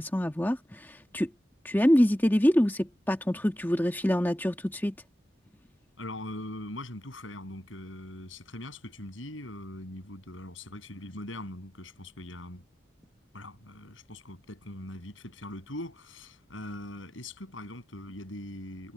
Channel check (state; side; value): normal; both; correlation 0.93